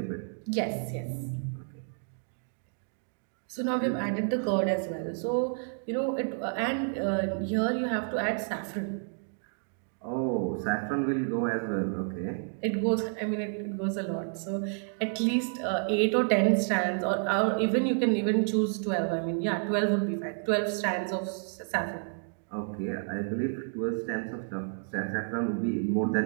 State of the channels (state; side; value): silent; left; 58 dB below the other